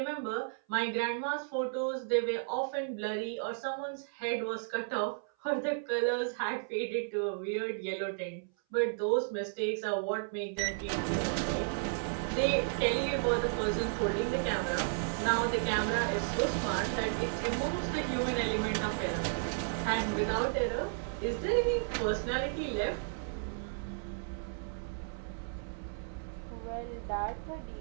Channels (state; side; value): silent; left; 55 dB below the other